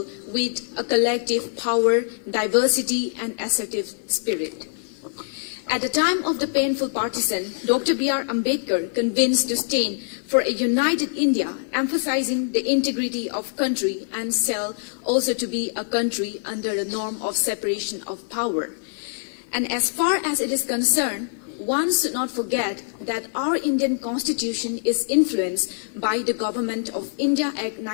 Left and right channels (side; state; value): right; silent; 63 dB below the other